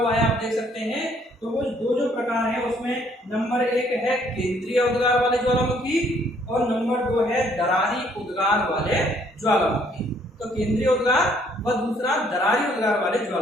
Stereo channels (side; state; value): both; normal; correlation 0.64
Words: है आप देख सकते हैं। तो वो दो जो प्रकार है उसमें नंबर 1 है केंद्रीय उद्गार वाले ज्वालामुखी और नंबर 2 है दरारी उद्गार वाले ज्वालामुखी। तो केंद्रीय उद्गार व दूसरा दरारी उद्गार वाले